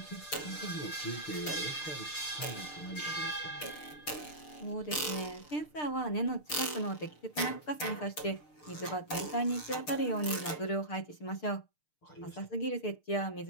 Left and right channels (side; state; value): right; late; 6.6 ms